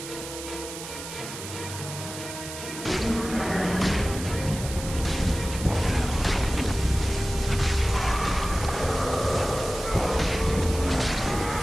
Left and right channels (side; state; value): right; noise; hiss, 10 dB below the sound